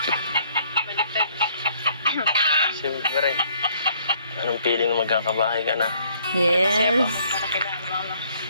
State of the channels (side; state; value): both; inverted; correlation -0.63